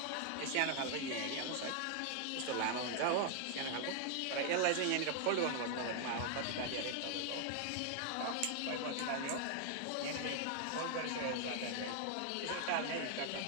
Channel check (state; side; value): different; both; correlation 0.00